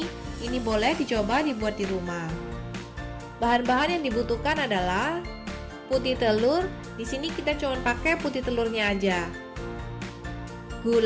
boleh dicoba dibuat di rumah. Bahan-bahan yang dibutuhkan adalah putih telur. Di sini kita cuma pakai putih telurnya aja.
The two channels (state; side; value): identical; both; correlation 1.00